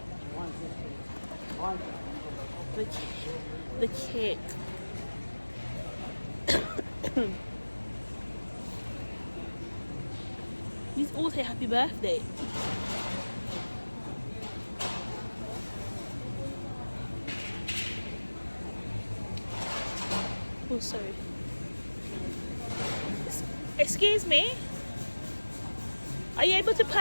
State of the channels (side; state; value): both; inverted; correlation -1.00